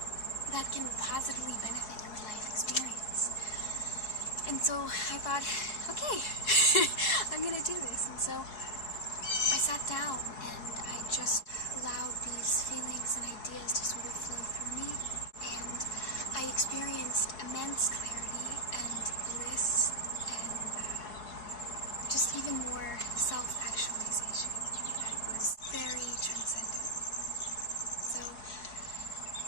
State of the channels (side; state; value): right; late; 4.7 ms